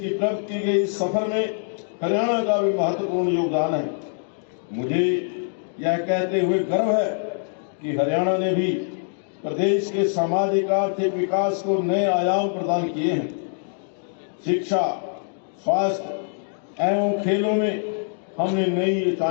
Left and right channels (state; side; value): silent; right; digital silence